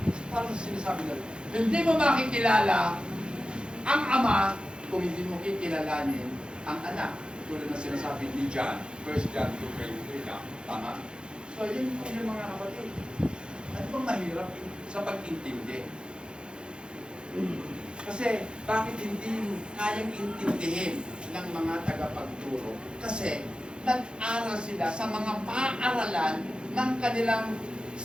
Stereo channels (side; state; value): left; late; 0.051 ms